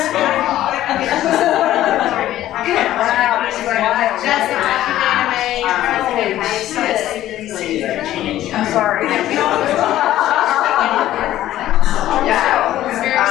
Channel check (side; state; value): right; quieter; 13.6 dB